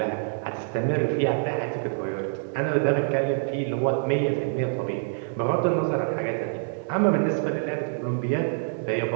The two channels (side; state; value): left; silent; 61 dB below the other